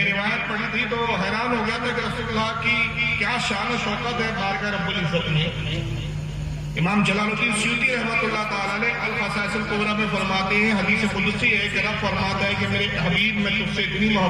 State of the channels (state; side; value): identical; both; correlation 1.00